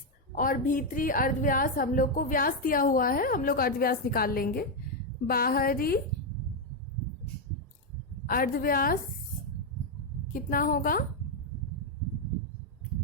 और भीतरी अर्धव्यास, हम लोग को व्यास दिया हुआ है, हम लोग अर्धव्यास निकाल लेंगे। बाहरी अर्धव्यास कितना होगा,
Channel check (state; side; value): normal; both; correlation 0.02